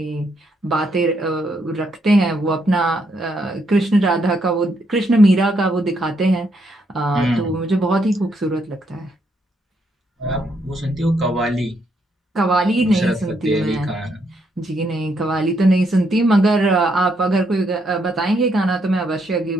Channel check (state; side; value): normal; both; correlation 0.75